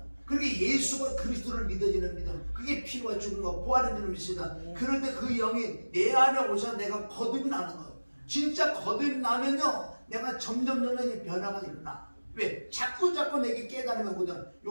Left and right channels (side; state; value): both; inverted; correlation -1.00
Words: 그렇게 예수가 그리스도를 믿어지는 믿음, 그게 피와 죽음과 부활인 줄 믿습니다. 그럴 때 그 영이 내 안에 오셔서 내가 거듭이 나는 거예요. 진짜 거듭이 나면요, 내가 점점 변화가 일어나. 왜? 자꾸 내게 깨달으면 오거든.